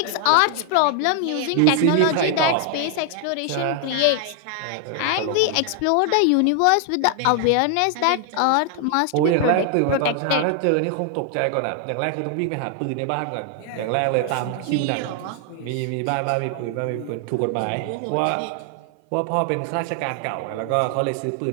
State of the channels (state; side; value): different; both; correlation 0.00